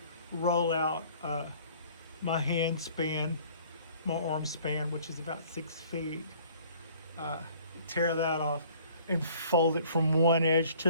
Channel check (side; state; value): both; inverted; correlation -0.54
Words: roll out my hand span, my arm span, which is about 6 feet. Tear that off and fold it from one edge